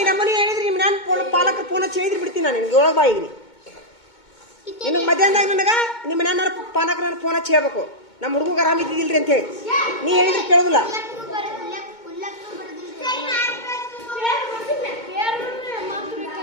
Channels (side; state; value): right; late; 2.2 ms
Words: ನಮ್ಮನೆ ಹೇಳಿದ್ರಿ ನಾನು ಪಾಲಕ ಫೋನ್ ಹಚ್ಚಿ ಹೇಳಿದ್ರಿ ಬಿಡ್ತೀನಿ ನಾನು ನಿನಗೆ ಒಳಗೆ ಬಾಯಿಗ್ರಿ ನಿನಗೆ ಮಧ್ಯಾಹ್ನದಾಗ ನನಗೆ ನಿಮ್ಮ ಮನೆಯವ್ರ ಪಾಲಕ ನಾನು ಫೋನ್ ಹಚ್ಚಿ ಹೇಳ್ಬೇಕು ನಮ್ಮ ಹುಡುಗ ಆರಾಮಿದ್ದಿಲ್ರಿ ಅಂತ ಹೇಳಿ ನೀ ಹೇಳಿದ್ರೆ ಕೇಳೋದಿಲ್ಲ